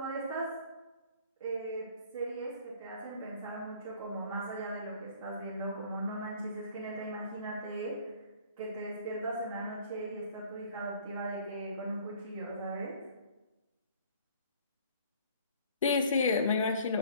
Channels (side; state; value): both; inverted; correlation -0.53